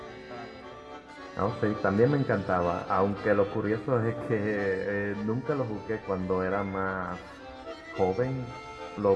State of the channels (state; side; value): identical; both; correlation 1.00